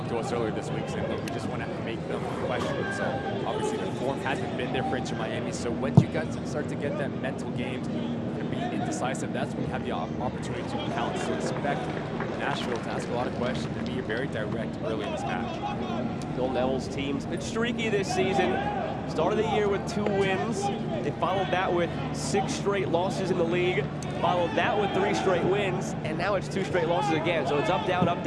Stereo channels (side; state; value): both; identical; correlation 1.00